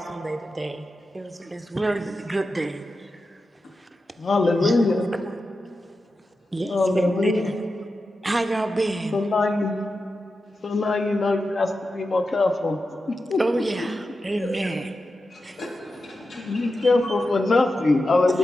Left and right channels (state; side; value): normal; both; correlation 0.91